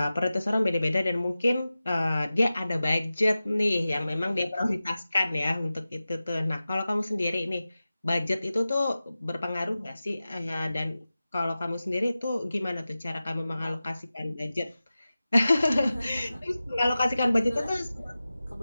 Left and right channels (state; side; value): inverted; both; correlation -0.95